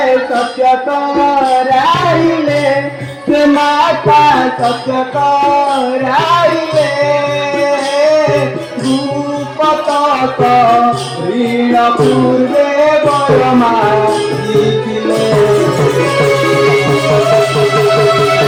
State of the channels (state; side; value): identical; both; correlation 1.00